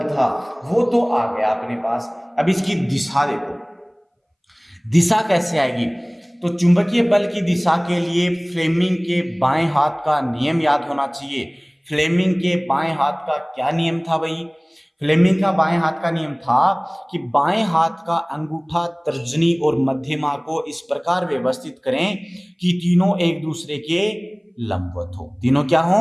था वो तो आ गया अपने पास। अब इसकी दिशा देखो, दिशा कैसे आएगी, तो चुंबकीय बल की दिशा के लिए फ्लेमिंग के बाएं हाथ का नियम याद होना चाहिए। फ्लेमिंग के बाएं हाथ का क्या नियम था भाई, फ्लेमिंग का बाएं हाथ का नियम था कि बाएं हाथ का अंगूठा, तर्जनी और मध्यमा को इस प्रकार व्यवस्थित करें कि तीनों एक दूसरे के लंबवत हो, तीनों क्या हो,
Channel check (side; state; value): both; identical; correlation 1.00